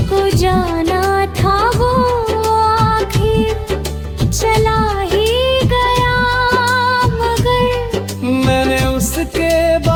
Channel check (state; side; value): identical; both; correlation 1.00